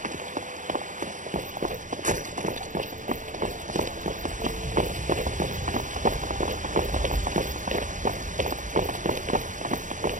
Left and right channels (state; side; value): late; left; 0.37 ms